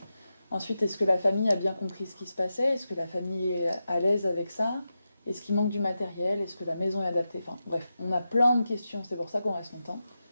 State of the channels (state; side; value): inverted; both; correlation -0.90